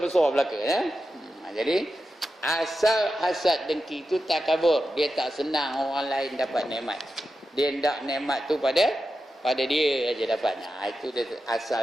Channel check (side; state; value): both; normal; correlation 0.90